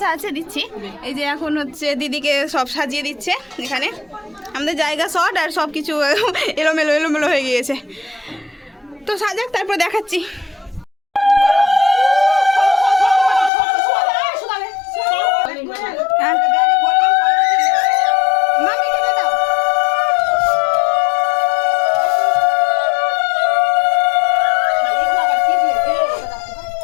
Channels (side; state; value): right; drops out; at 13.5 s